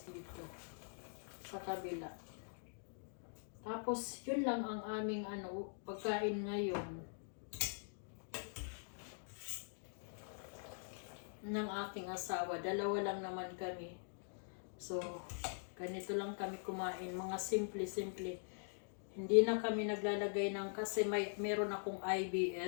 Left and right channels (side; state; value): right; silent; digital silence